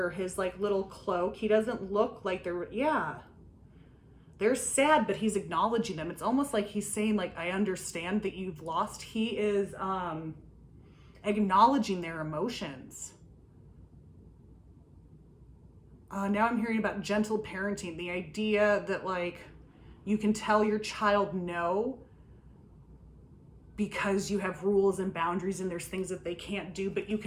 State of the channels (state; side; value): identical; both; correlation 1.00